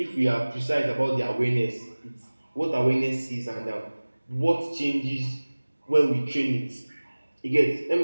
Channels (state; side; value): inverted; both; correlation -1.00